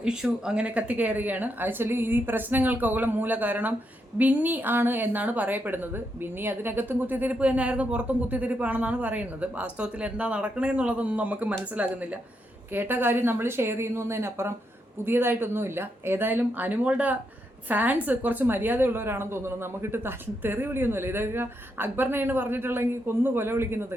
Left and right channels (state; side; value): normal; both; correlation 0.81